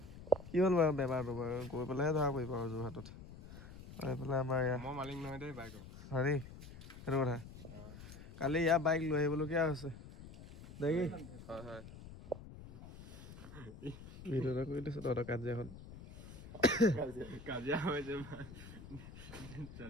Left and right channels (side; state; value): left; noise; rumble, 14 dB below the sound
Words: কি হ'ল বাৰু বেমাৰটো বাৰু গৈ পেলাইহে ধৰা পৰিব আৰু যোৰহাটত এইফালে আমাৰ মালিক নহয় দেই বাইকৰ হেৰি সেইটো কথা কালি ইয়াৰ বাইক লৈ আহিবলগীয়া হৈছে দেখি ভিডিঅ'টা কৰি দিছো তহঁতৰ কাজিয়াখন কাজিয়া হৈছে